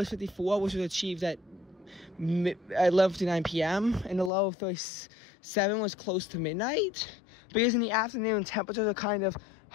54, which was achieved at 11:59 p.m., and the low of 37 was close to midnight, because in the afternoon, temperatures are kind of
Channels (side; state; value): right; drops out; at 4.3 s